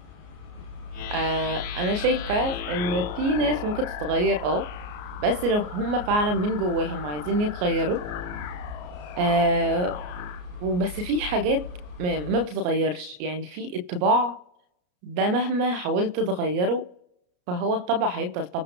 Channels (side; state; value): left; late; 33 ms